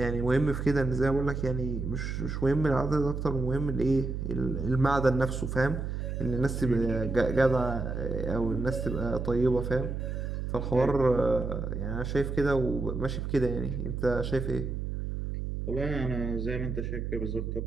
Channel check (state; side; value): noise; right; hum, 3 dB below the sound